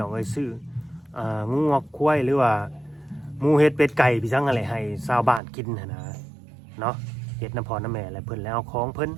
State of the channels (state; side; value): drops out; left; at 5.4 s